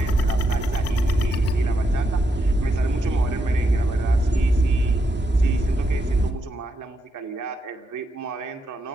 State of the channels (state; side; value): normal; both; correlation 0.81